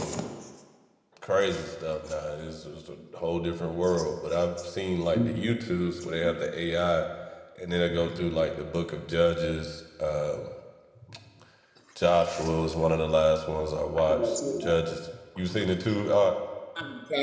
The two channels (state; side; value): identical; both; correlation 1.00